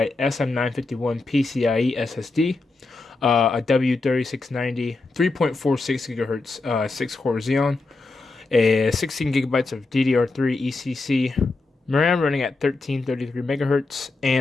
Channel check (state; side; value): quieter; right; 3.5 dB